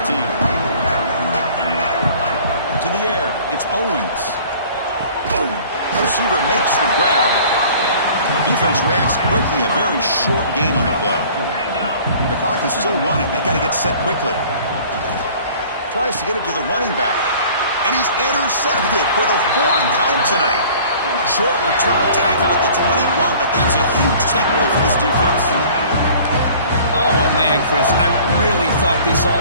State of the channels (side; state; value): both; inverted; correlation -0.49